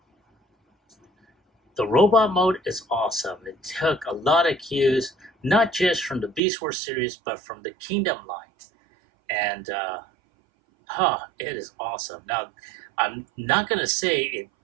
the robot mode is awesome. It took a lot of cues, not just from the Buzzworthy series, but from the Kingdom line. And it is awesome. Now, I'm not going to say it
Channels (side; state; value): left; drops out; at 6.4 s